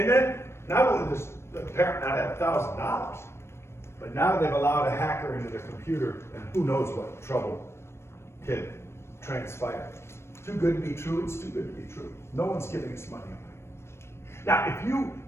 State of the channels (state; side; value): late; right; 0.13 ms